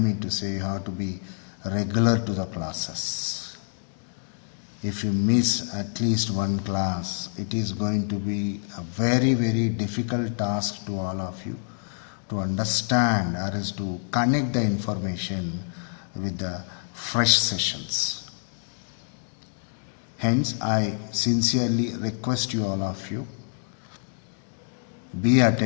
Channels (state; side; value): silent; right; digital silence